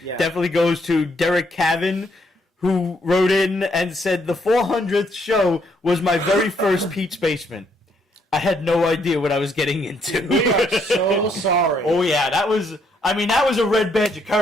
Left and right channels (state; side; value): normal; both; correlation 0.72